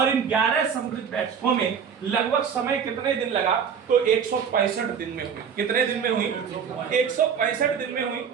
इन 11 समृद्ध बैठकों में लगभग समय कितने दिन लगा? तो 165 दिन में हुई। कितने दिन में हुई? 165 दिन में हुई।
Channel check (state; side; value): quieter; left; 7.1 dB